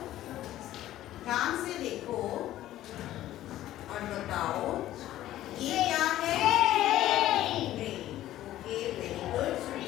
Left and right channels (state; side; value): quieter; right; 13.8 dB